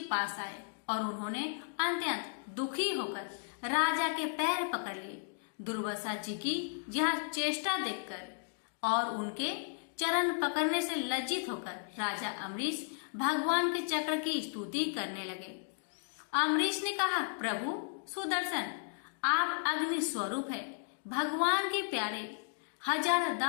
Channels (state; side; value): silent; right; digital silence